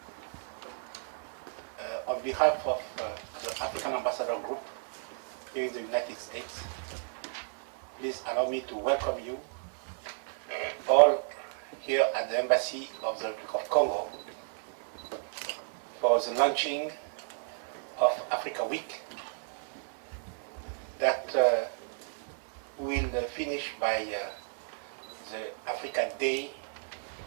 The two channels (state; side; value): silent; left; 56 dB below the other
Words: on behalf of the African Ambassador Group here in the United States, please allow me to welcome you all here at the Embassy of the Republic of Congo for the launching of Africa Week that will finish by the African Day